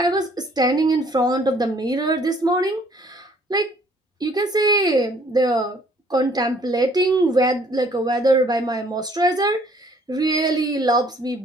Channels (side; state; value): both; normal; correlation 0.60